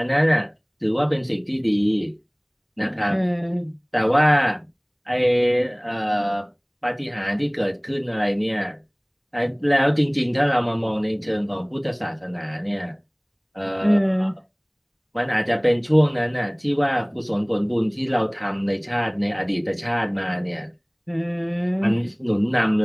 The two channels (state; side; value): identical; both; correlation 1.00